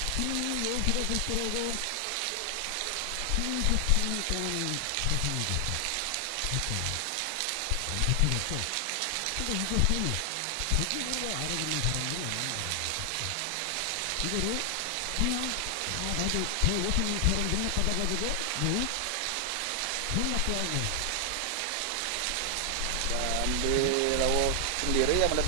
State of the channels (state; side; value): different; both; correlation 0.00